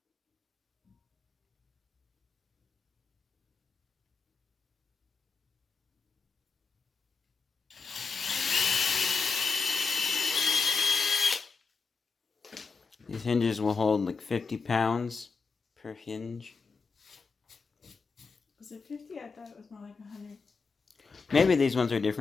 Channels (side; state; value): right; quieter; 4.8 dB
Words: These hinges will hold like 50 pounds per hinge. Was it 50? I thought it was more like 100. Maybe these ones are